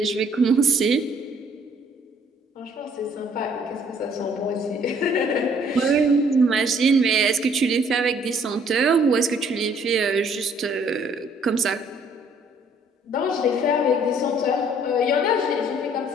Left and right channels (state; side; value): normal; both; correlation 0.61